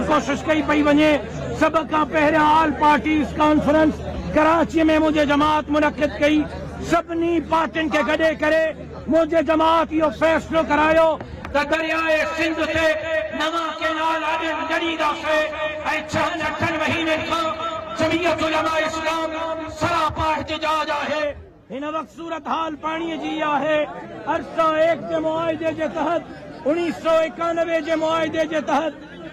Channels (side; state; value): both; identical; correlation 1.00